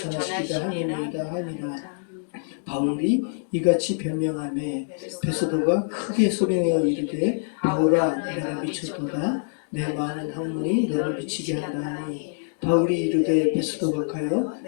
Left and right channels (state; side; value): silent; right; digital silence